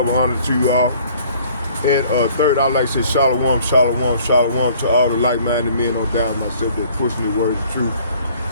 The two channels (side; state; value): both; inverted; correlation -0.55